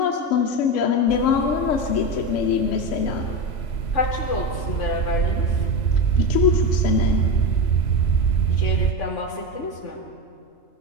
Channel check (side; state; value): right; late; 3.0 ms